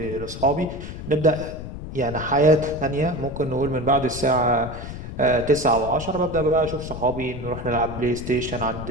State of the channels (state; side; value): noise; left; rumble, 9 dB below the sound